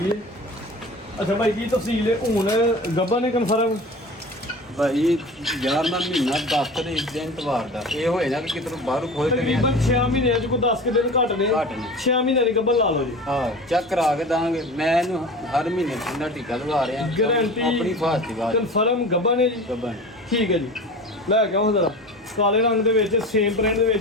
ਹੈ ਅੱਛਾ ਭਾਈ ਕੀ ਤਫਸੀਲ ਹੈ ਹੁਣ ਗੱਬਾ ਨੇ ਕਨਫਰਮ ਭਾਈ 11ਵਾਂ ਮਹੀਨਾ 10 ਤਰੀਕ ਦਿਨ ਤਵਾਰ ਦਾ ਇਹ ਹੋਏ ਨਾ ਕਿ ਕਿਤੋਂ ਬਾਹਰੋਂ ਖੋਲ ਕੇ ਤਕਰੀਬਨ 6 ਮਹੀਨਿਆਂ ਚ ਕੋਈ 10 ਕਿ ਦਿਨ ਘੱਟ ਨੇ ਘੱਟ ਨੇ। 6 ਮਹੀਨਿਆਂ ਦੀ ਗੱਬਾ ਲਾ ਲਓ ਜੀ ਹਾਂ ਚੈੱਕ ਕਰਾ ਕੇ ਦਾਂਗੇ ਮੈਂ ਇਹਨੂੰ ਹਰ ਮਹੀਨੇ ਠੰਡਾ ਟੀਕਾ ਲਗਾ ਰਿਹਾ ਗਾਰੰਟੀ ਆਪਣੀ ਫਾਸਟ ਦੀ ਬਾਤ ਕਨਫਰਮ ਗੱਬਾ ਨੇ ਜੀ ਗੱਬਨ ਠੀਕ ਹੈ ਜੀ ਲੈ ਕੇ ਆਓ ਜ਼ਰਾ ਕਾਲੇ ਰੰਗ ਦੇ ਵਿੱਚ ਸੇਮ ਪ੍ਰਿੰਟ ਦੇ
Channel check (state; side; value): normal; both; correlation 0.35